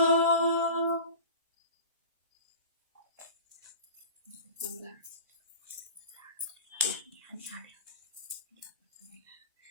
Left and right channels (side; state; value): both; inverted; correlation -0.37